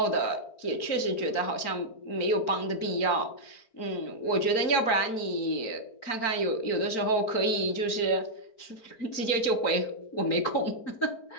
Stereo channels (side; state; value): right; late; 4.4 ms